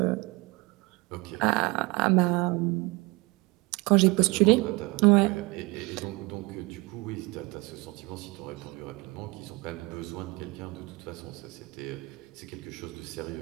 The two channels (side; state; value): left; quieter; 24.6 dB